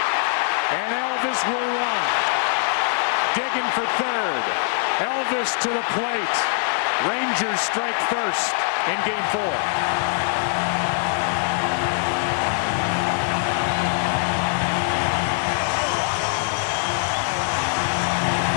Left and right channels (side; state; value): right; silent; digital silence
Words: And Elvis will run. Digging for third. Elvis to the plate. Rangers strike first in game 4.